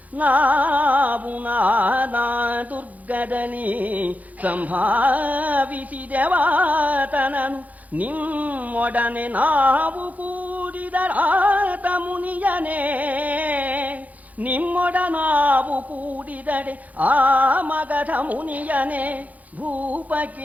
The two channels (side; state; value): left; late; 0.076 ms